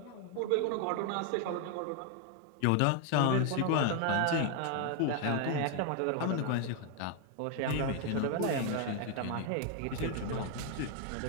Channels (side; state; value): both; different; correlation 0.01